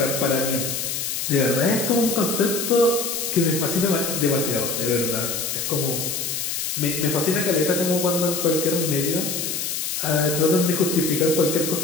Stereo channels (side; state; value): left; noise; hiss, 2 dB below the sound